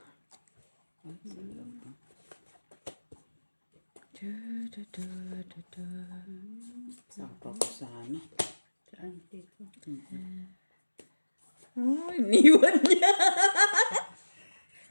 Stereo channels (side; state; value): both; inverted; correlation -1.00